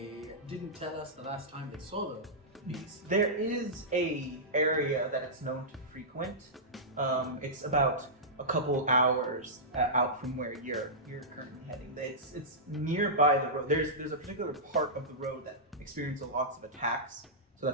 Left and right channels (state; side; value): normal; both; correlation -0.15